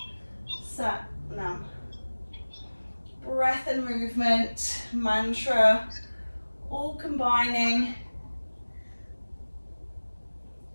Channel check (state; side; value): inverted; both; correlation -1.00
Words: Sat Nam. Breath and movement, mantra, all combining.